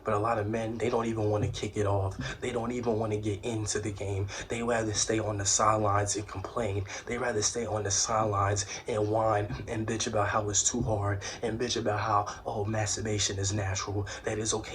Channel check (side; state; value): both; identical; correlation 1.00